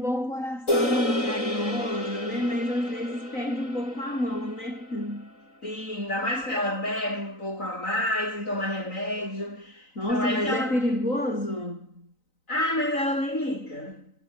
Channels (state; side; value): late; right; 3.9 ms